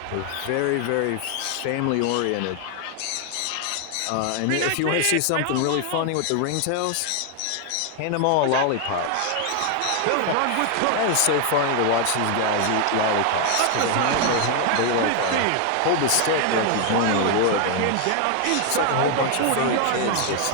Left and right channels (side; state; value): both; different; correlation 0.00